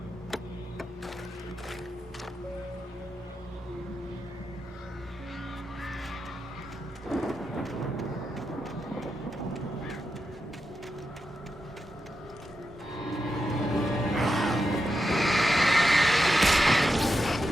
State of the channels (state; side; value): normal; both; correlation 0.87